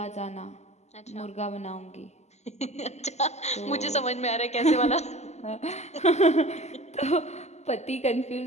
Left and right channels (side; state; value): right; late; 0.33 ms